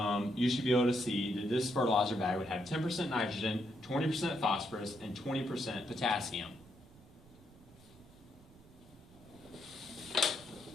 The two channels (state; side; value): noise; right; rumble, 23 dB below the sound